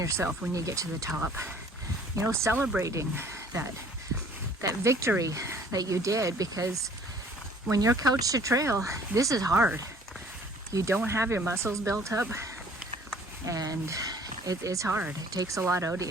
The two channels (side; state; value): both; normal; correlation 0.55